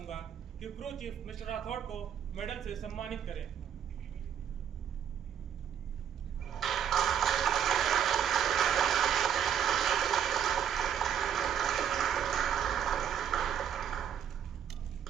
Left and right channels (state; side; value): quieter; left; 8.9 dB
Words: कि क्रू चीफ मिस्टर राठौड़ को मेडल से सम्मानित करें।